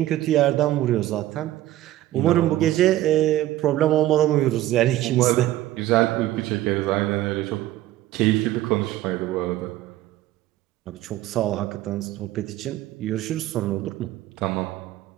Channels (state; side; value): quieter; left; 14.6 dB